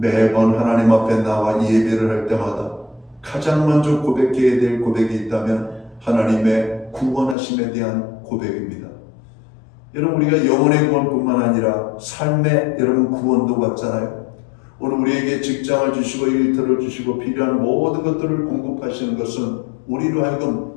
하나님 앞에 나와 예배를 할 때마다 가장 먼저 고백해야 될 고백이 있다면 하나님의 구원하심에 대한 고백입니다. 여러분, 우리가 영혼의 구원뿐만 아니라 삶의 여러분 구원도 받잖아요. 오늘 우리에게 직장을 주시고 일터를 주시고 필요한 모든 것들을 공급하시는 것은 우리로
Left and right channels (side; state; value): right; drops out; at 7.4 s